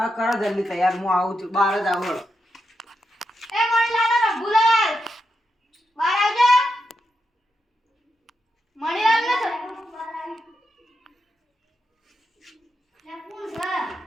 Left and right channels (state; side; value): normal; both; correlation 0.85